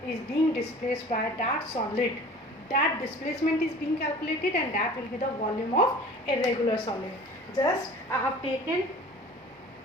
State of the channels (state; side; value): normal; both; correlation 0.44